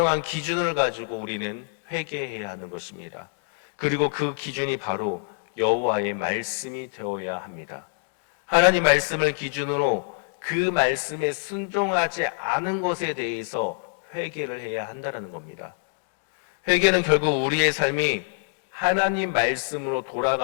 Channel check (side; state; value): right; silent; 60 dB below the other